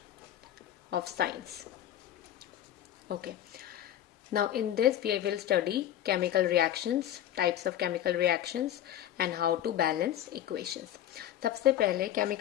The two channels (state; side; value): quieter; right; 11.6 dB